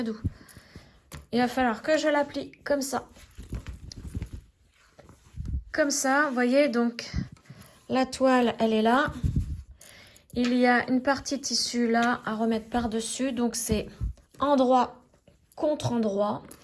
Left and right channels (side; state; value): both; identical; correlation 1.00